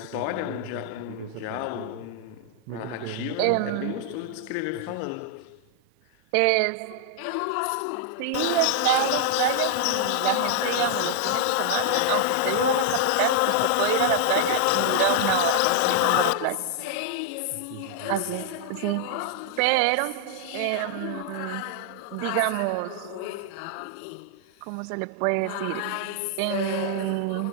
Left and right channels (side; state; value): both; different; correlation -0.01